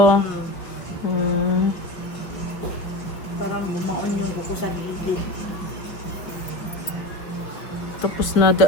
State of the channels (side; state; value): right; late; 5.2 ms